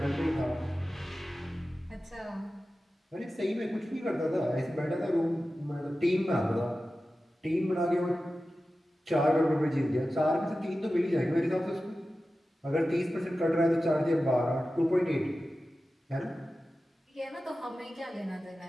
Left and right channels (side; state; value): both; normal; correlation 0.94